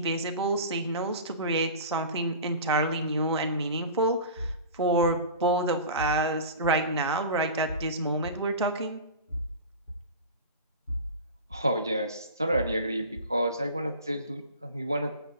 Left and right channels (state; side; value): inverted; both; correlation -0.33